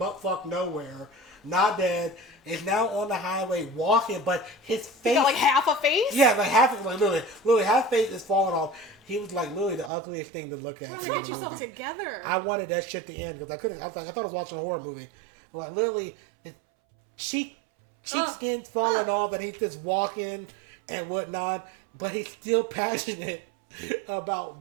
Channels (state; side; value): drops out; left; at 9.9 s